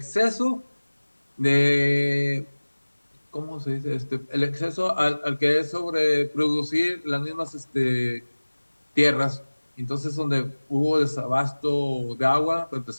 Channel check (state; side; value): inverted; both; correlation -1.00